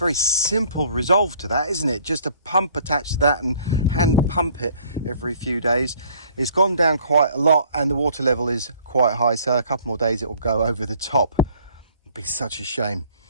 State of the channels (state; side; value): inverted; both; correlation -0.57